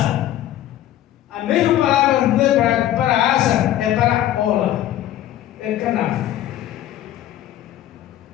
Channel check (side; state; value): right; quieter; 12.8 dB